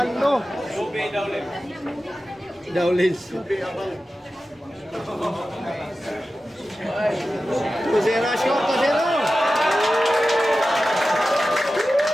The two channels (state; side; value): normal; both; correlation 0.94